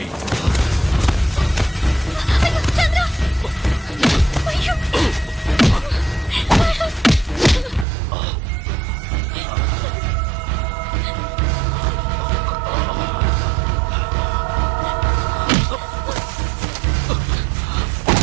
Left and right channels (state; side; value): drops out; left; at 7.9 s